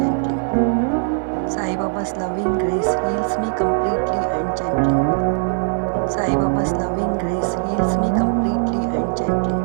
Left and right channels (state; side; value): silent; left; digital silence